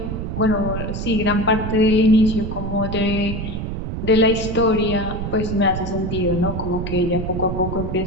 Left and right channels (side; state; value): right; noise; rumble, 4 dB below the sound